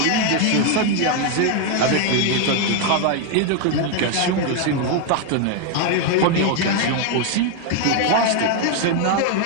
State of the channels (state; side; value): different; both; correlation 0.01